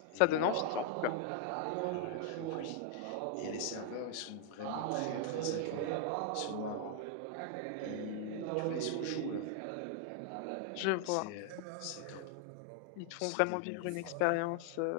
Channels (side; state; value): both; different; correlation 0.00